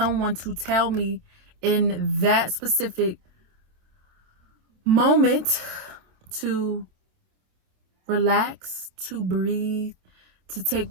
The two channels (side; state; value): left; late; 27 ms